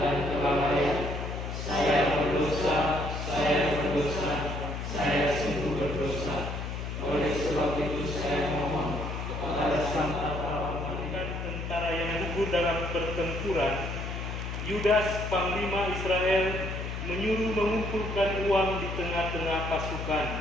dan kelalaian. Saya berdosa, saya sungguh berdosa. Oleh sebab itu saya mohon kepada Sang Pahlawan tentara yang gugur dalam pertempuran, Yudas, panglima Israel, menyuruh mengumpulkan uang di tengah-tengah pasukan.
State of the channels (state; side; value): noise; left; hum, 5 dB below the sound